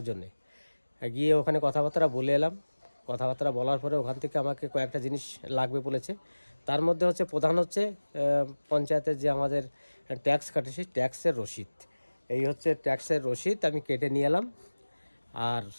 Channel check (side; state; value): both; inverted; correlation -1.00